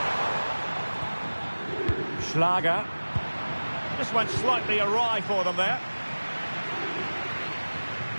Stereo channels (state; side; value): inverted; both; correlation -1.00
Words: Schlager. This went slightly awry for them there.